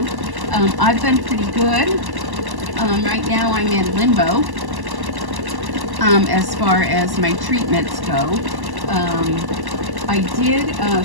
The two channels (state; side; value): late; left; 1.1 ms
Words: I've been pretty good. Right now I'm in limbo as far as my treatments go. I did